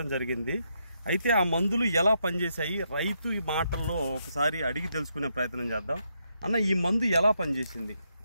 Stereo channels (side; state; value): both; inverted; correlation -0.79